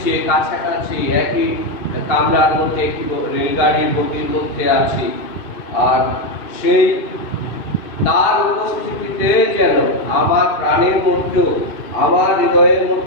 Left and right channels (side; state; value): right; late; 2.6 ms